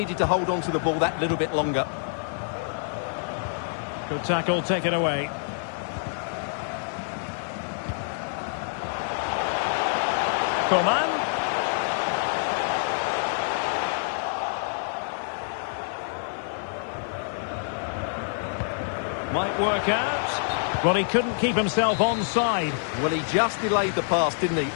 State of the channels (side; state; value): right; silent; 57 dB below the other